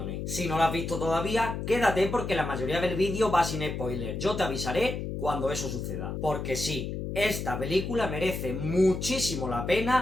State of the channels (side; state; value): left; noise; hum, 4 dB below the sound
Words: Si no la has visto todavía, quédate porque la mayoría del vídeo va sin spoiler. Yo te avisaré cuando eso suceda. Porque sí, esta película merece muchísimo la